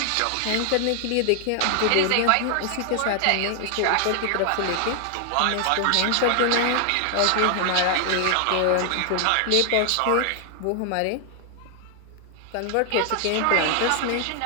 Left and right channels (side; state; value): both; different; correlation 0.00